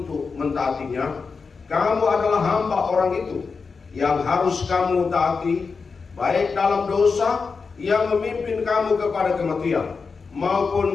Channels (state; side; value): quieter; right; 4.9 dB